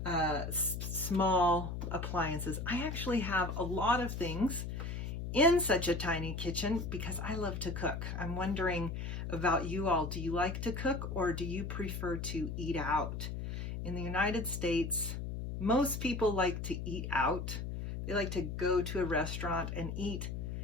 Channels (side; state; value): left; noise; hum, 5 dB below the sound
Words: small appliances. I actually have a lot of things in such a tiny kitchen because I love to cook. I'm wondering about you all. Do you like to cook or do you prefer to eat out? In the United States, most people like to eat out. They like to go to a restaurant and eat